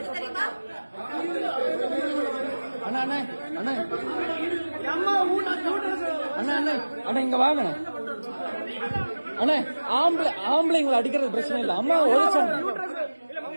அண்ணா அண்ணா அண்ணா அம்மா அண்ணா அண்ணா அண்ணா இங்க வாங்க அண்ணா. ஆம்பளைங்களை அடிக்கிறது பிரச்சனை இல்ல. அம்மா உழைச்சாங்க.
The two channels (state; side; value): inverted; both; correlation -1.00